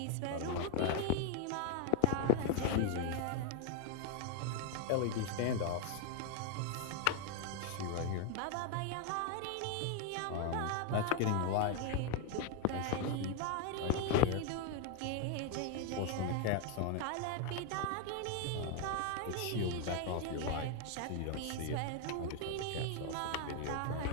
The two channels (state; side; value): different; both; correlation 0.01